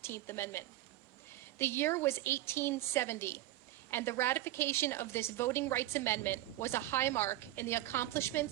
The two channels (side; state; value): left; quieter; 15.4 dB